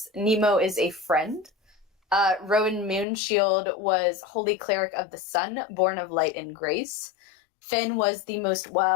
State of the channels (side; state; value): right; drops out; at 3.1 s